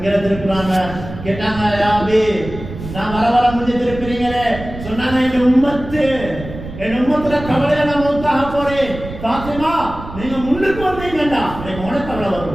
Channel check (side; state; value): right; noise; rumble, 11 dB below the sound